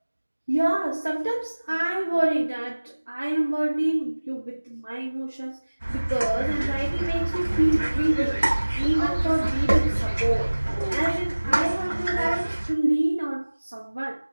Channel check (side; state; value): both; inverted; correlation -1.00